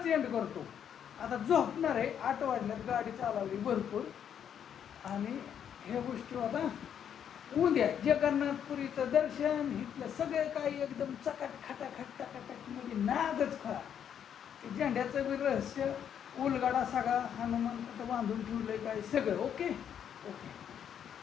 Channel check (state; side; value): quieter; right; 8.8 dB